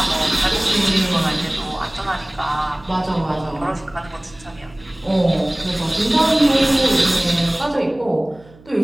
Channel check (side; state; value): right; noise; hum, 24 dB below the sound